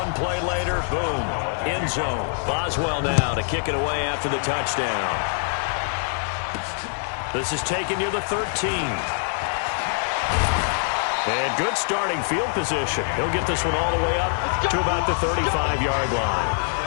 play later, boom, end zone. Boswell now to kick it away after the touchdown. This is taken near the 13. And good starting field position. He'll get this one all the way up to about the 35-yard line.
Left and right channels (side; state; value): right; silent; 63 dB below the other